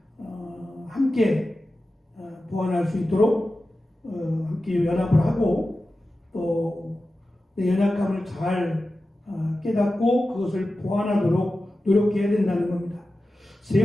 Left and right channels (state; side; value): normal; both; correlation 0.94